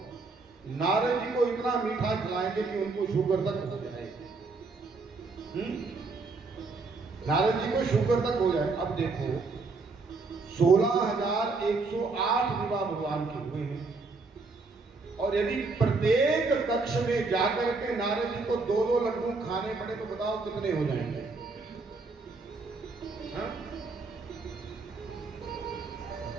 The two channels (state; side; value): quieter; left; 3.9 dB